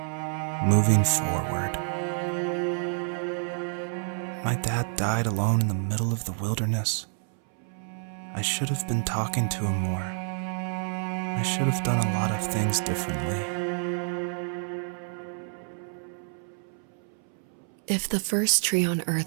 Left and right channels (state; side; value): silent; left; 59 dB below the other